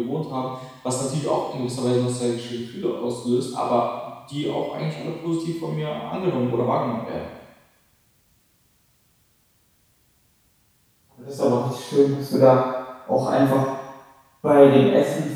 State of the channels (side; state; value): both; identical; correlation 1.00